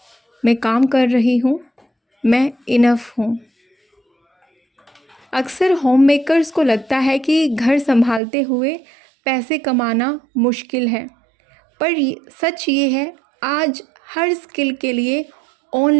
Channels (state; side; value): drops out; left; at 8.2 s